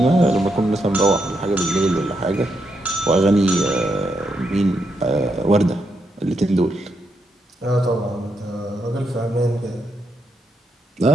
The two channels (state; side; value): normal; both; correlation 0.81